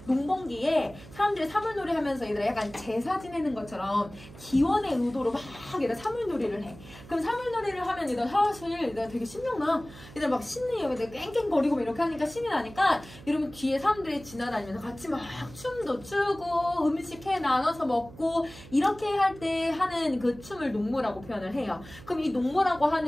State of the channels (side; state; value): right; noise; hum, 18 dB below the sound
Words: 농번기에 사람들이 사물놀이 하면서 얘들아 약간 제사 지내는 것처럼 기원의 의도로 막 얘들아 사물놀이를 해. 그럼 사물놀이를 하면 얘들아 사실 얘들아 되게 신명나. 얘들아 막 신이 여기다 깽깽거리고 이렇게 하니까 신이 나니까 여러분 뒤에 사람들이 지나다니면서 같이 막 춤도 추고 음식 해 나눠서 먹고 이렇게 할 때 하는 그 춤을 농무라고 표현을 해요. 그럼 이 농무라고